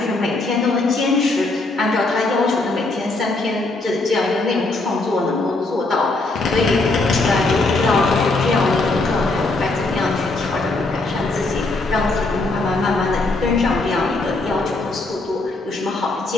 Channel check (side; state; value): right; quieter; 3.2 dB